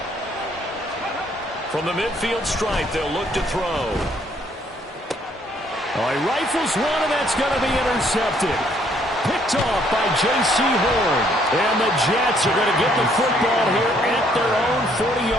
From the midfield stripe, they'll look to throw. Oh, he rifles one, and that's going to be intercepted. Picked off by J.C. Horn. And the Jets are going to get the football here at their own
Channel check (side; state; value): both; normal; correlation 0.66